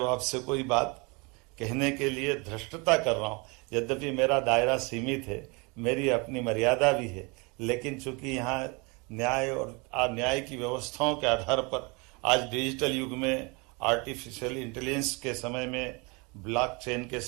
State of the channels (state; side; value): quieter; left; 29.2 dB